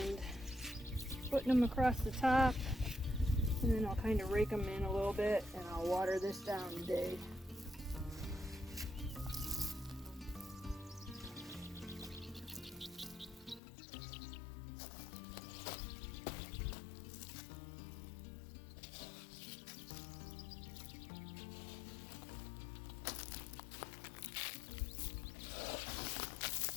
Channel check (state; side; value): drops out; right; at 13.6 s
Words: putting them across the top, and then I'll kind of rake them in a little bit and I'll water this down today.